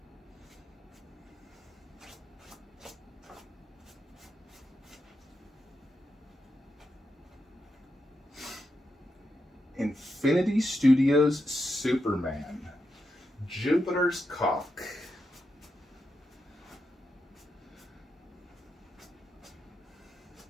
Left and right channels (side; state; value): both; normal; correlation 0.85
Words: Infinity Studios Superman. Jupiter's cock.